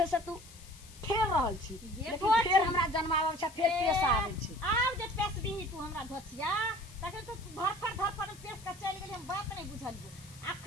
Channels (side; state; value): left; noise; hiss, 20 dB below the sound